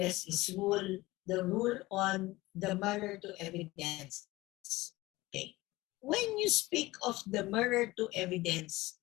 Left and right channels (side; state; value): right; quieter; 19.5 dB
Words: is the rule on the mirror to evidence. Okay. When you speak of the mirror to evidence,